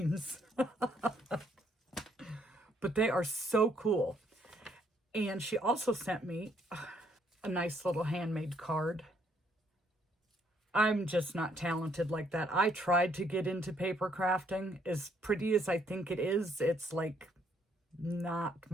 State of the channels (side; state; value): both; normal; correlation 0.68